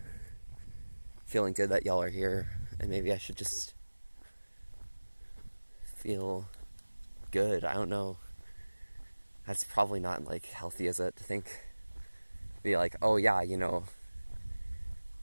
feeling good that y'all are here, and maybe I should just feel good. I don't know. That's probably not like healthy, is it? To think, be like, oh yeah, you know,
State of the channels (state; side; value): inverted; both; correlation -1.00